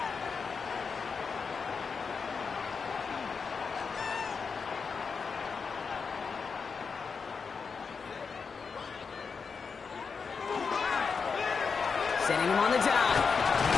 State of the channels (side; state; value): right; quieter; 5.4 dB